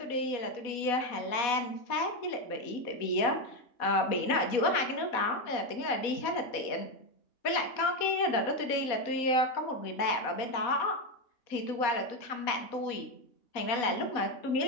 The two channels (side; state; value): right; late; 4.1 ms